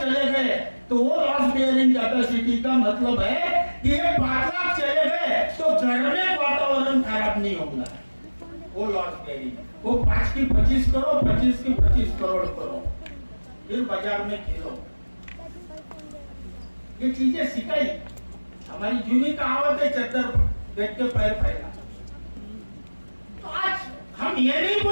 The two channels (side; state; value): both; inverted; correlation -1.00